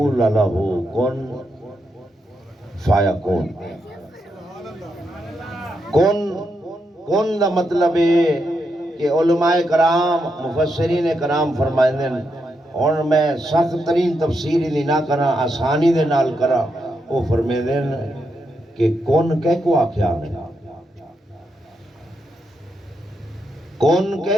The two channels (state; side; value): normal; both; correlation 0.82